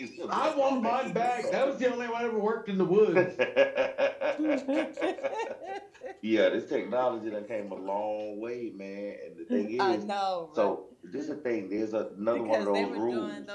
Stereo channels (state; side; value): identical; both; correlation 1.00